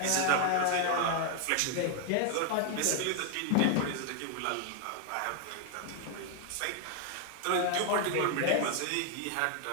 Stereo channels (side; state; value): both; different; correlation 0.00